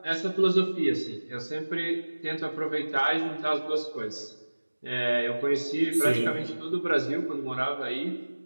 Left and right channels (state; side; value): inverted; both; correlation -1.00